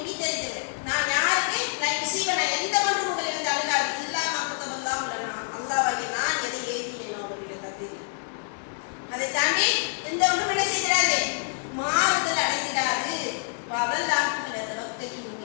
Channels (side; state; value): right; silent; digital silence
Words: நான் யாருக்கு நான் முசீப நான் எந்த ஒன்றும் உங்களை வந்து அழுகாது இல்லாம குத்தவெல்லாம் உள்ளனா அல்லாஹ்வாகிய நான் எதை எழுதினேனோ அவருடைய தகுதி. அதை தாண்டி எந்த ஒன்றும் என்ன செய்கிறாரு, மாறுதல் அடைந்திடாது. அதெல்லாம்